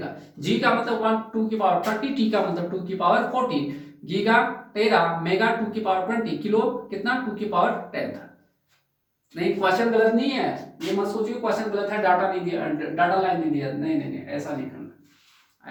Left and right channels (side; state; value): both; identical; correlation 1.00